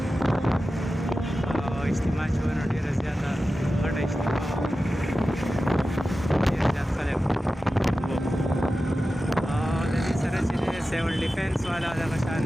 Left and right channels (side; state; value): both; normal; correlation 0.94